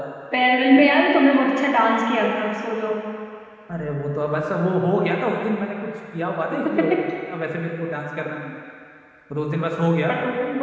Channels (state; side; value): identical; both; correlation 1.00